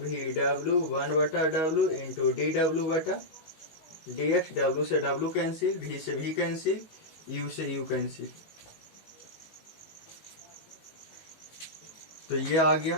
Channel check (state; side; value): late; right; 19 ms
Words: W 1/w into D डब्ल्यू बटा D x. W से W cancel, भी से भी cancel, you से you cancel, तो ये आ